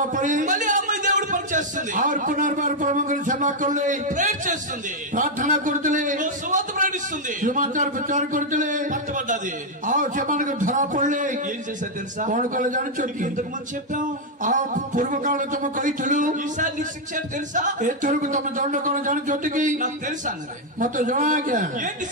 पड़ी మళ్ళీ అమ్మాయి దేవుడు పని చేస్తుంది, और पुनर्बार प्रभु सेवा कर ले ప్రేయర్ చేస్తుంది, प्रार्थना करते సువార్త ప్రకటిస్తుంది, समाचार प्रचार करते పట్టబడ్డది. आओ सेमान को धरा पड़े. ఏం చేశారు తెలుసా? कौन कले जान ఇంతకు ముందు చెప్పాం. आओ पूर्व काल तुम कही थलु ఈసారి నీకు శిక్ష ఏంటి తెలుసా? ए थरु तुम दंड कौन जान चोटी की నాకు తెలుసా అన్నది. मत जना क्या ఏంటి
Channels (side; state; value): both; normal; correlation 0.00